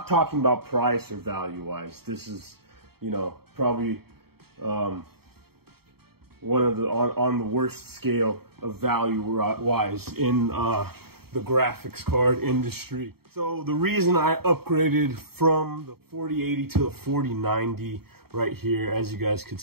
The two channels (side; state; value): left; late; 0.95 ms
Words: talking about price or value wise. This is, you know, probably one of the on the worst scale of value wise in the graphics card industry. So the reason I upgraded from the 4080 to the 4090 right here, as you guys could